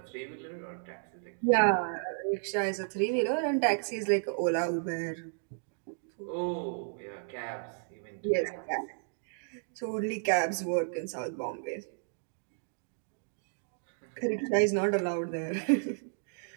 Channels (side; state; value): left; silent; digital silence